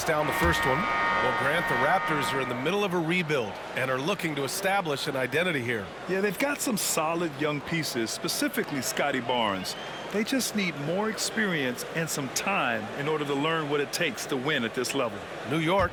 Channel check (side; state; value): left; noise; hum, 30 dB below the sound